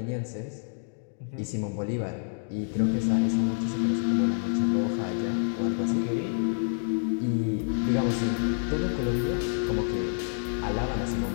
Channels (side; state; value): right; silent; digital silence